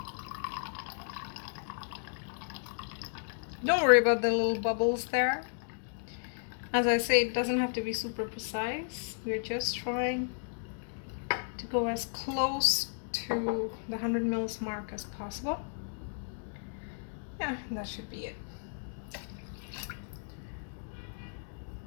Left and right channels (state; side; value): silent; right; digital silence